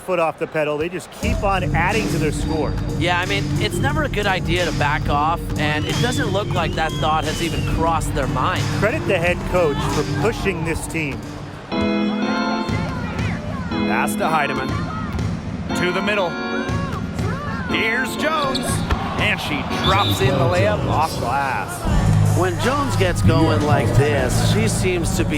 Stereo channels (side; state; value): both; identical; correlation 1.00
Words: off the pedal. They just keep on adding to their score. Yeah, I mean, it's never a good idea to back off, and it doesn't look like that thought has even crossed their mind. Credit the head coach for pushing this team. Pass to Heidemann. To the middle. Here's Jones. And she drops in the layup off glass. When Jones gets going like this, she seems to